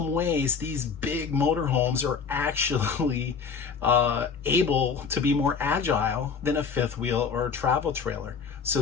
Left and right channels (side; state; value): right; quieter; 5.8 dB